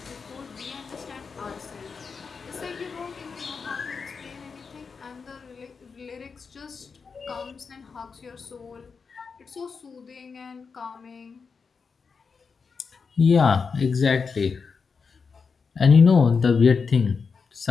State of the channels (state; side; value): quieter; right; 5.3 dB